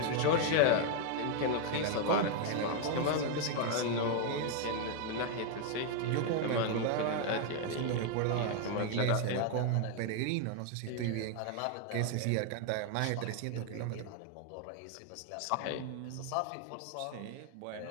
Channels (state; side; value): different; both; correlation 0.00